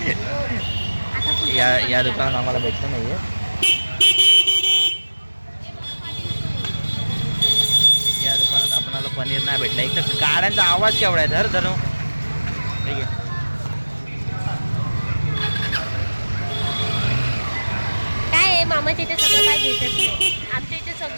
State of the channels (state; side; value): inverted; both; correlation -1.00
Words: आता कुठे या दुकानात आम्हाला भेटलं नाही आहे. या दुकानात आपल्याला पनीर नाही भेटलं. एक तर गाड्यांचा आवाज केवढा आहे. धर धरू ठीक आहे. काय आहे मामाच्या इथे सगळं काय भेटत नाही. आमच्या इथे